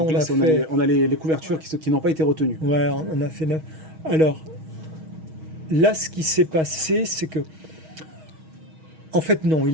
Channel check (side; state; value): left; late; 6.3 ms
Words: on a les couvertures qui n'ont pas été retenues. Ouais, on a fait 9. Alors, là, ce qui s'est passé, c'est que... En fait, non, il